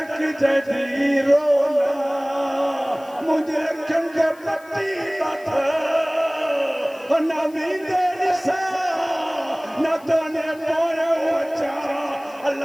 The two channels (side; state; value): left; noise; hiss, 26 dB below the sound